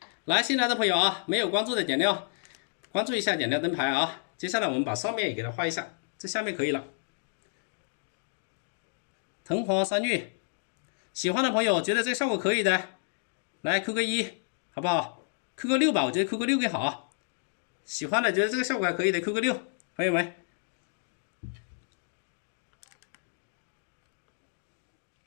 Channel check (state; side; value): silent; right; digital silence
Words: 来，新来的朋友啊，没有关注的点亮，关注一下，点亮灯牌啊。接下来我们把上面也给它画一下，这下面可以了。藤黄山芋，喜欢的朋友觉得这个效果可以的，来扣个1，好不好？扣个6吧，我觉得扣个6更好。喜欢的觉得这个效果还可以的，扣个6，朋友们。